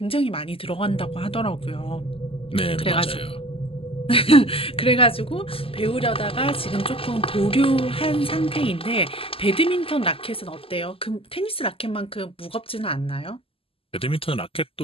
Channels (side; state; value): right; late; 0.27 ms